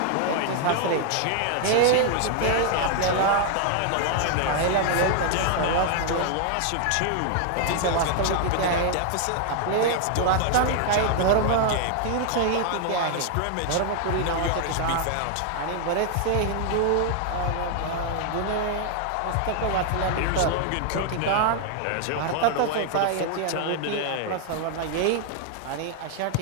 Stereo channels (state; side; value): different; both; correlation 0.00